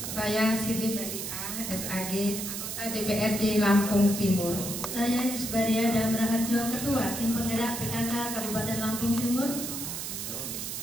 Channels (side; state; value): right; noise; hiss, 5 dB below the sound